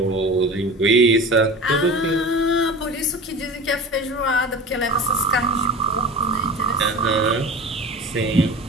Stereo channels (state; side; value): normal; both; correlation 0.34